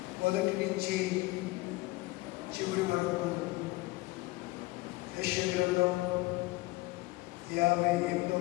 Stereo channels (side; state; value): right; quieter; 21.0 dB